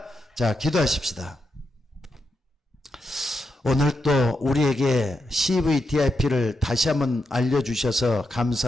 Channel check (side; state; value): both; normal; correlation 0.85